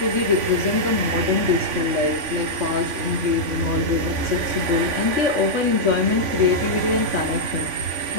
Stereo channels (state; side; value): late; left; 3.5 ms